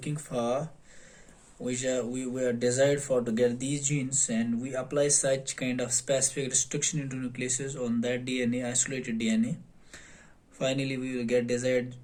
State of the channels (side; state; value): both; identical; correlation 1.00